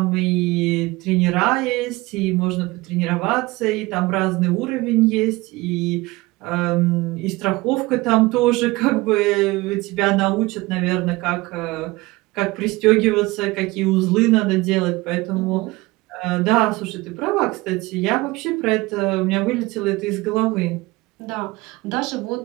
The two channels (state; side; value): quieter; left; 21.5 dB